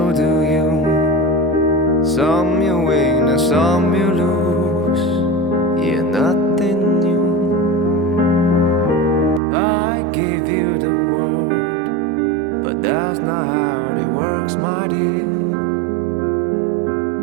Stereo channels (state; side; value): drops out; left; at 9.4 s